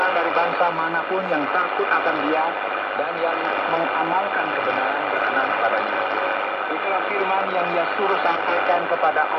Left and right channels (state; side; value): identical; both; correlation 1.00